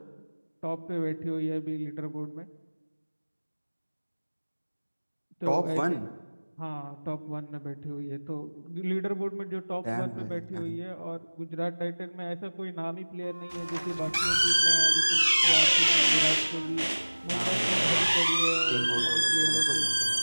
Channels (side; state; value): both; inverted; correlation -1.00